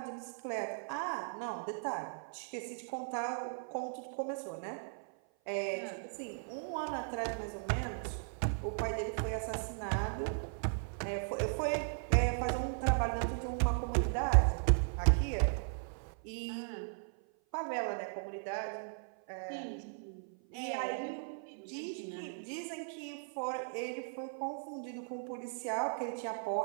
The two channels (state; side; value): silent; left; 53 dB below the other